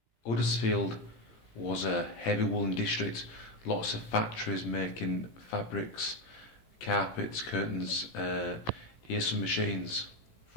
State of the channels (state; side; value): late; right; 18 ms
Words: Huddersfield was a heavy woolen district, lots of factories making fabrics, carpets, curtains. Here's some machines